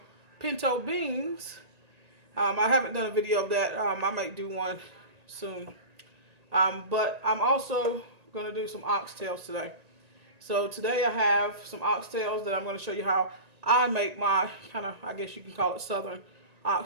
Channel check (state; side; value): late; left; 1.9 ms